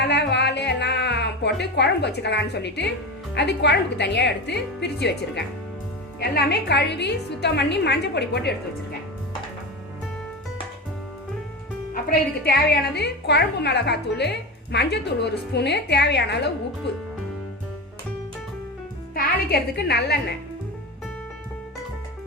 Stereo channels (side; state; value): both; normal; correlation 0.23